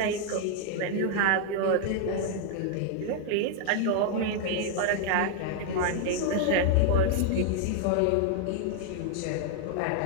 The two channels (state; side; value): different; both; correlation 0.00